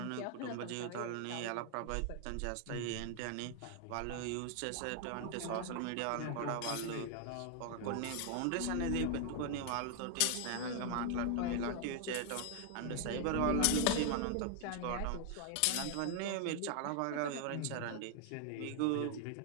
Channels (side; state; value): both; different; correlation 0.00